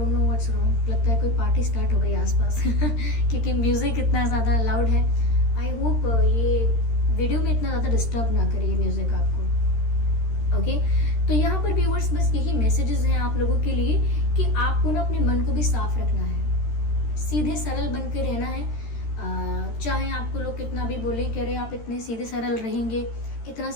know what's wrong, लगता है कोई पार्टी स्टार्ट हो गई आसपास क्योंकि म्यूज़िक इतना ज़्यादा लाउड है। आई होप ये वीडियो में इतना ज़्यादा डिस्टर्ब ना करे ये म्यूज़िक आपको। ओके, तो यहाँ पर व्यूअर्स बस यही मैसेजेस हैं आप लोगों के लिए कि आपको ना अपने मन को भी साफ रखना है, सीधे सरल बन के रहना है। चाहे आपको लोग कितना भी बोले कि अरे आप इतने सीधे सरल रहेंगे, इतना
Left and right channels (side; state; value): right; late; 13 ms